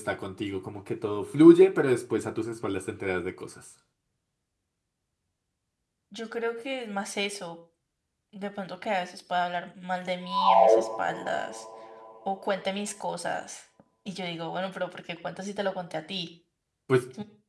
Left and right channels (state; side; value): identical; both; correlation 1.00